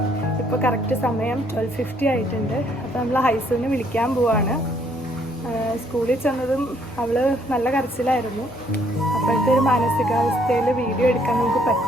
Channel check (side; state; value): both; normal; correlation 0.66